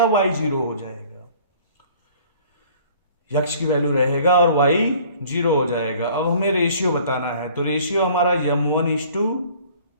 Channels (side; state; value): both; inverted; correlation -0.53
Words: y 0 हो जाएगा, x की वैल्यू रहेगा और y 0 हो जाएगा। अब हमें रेशियो बताना है, तो रेशियो हमारा